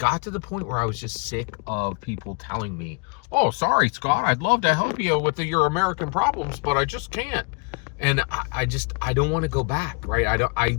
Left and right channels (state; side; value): quieter; right; 33.6 dB